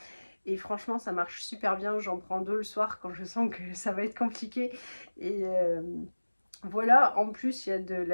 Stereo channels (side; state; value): both; inverted; correlation -1.00